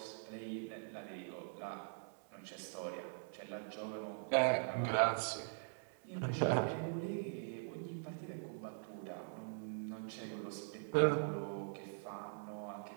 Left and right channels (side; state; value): left; silent; digital silence